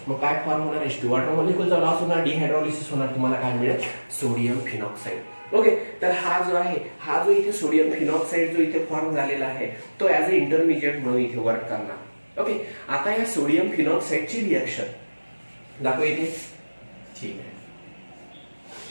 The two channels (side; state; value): both; inverted; correlation -1.00